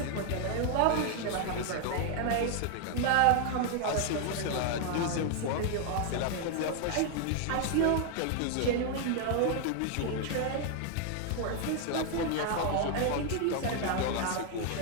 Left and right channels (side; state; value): both; different; correlation 0.00